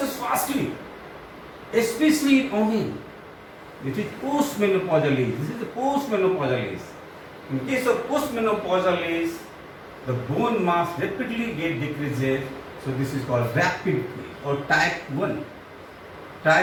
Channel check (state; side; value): identical; both; correlation 1.00